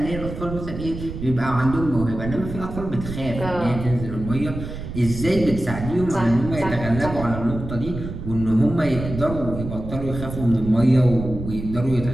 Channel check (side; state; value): right; noise; rumble, 8 dB below the sound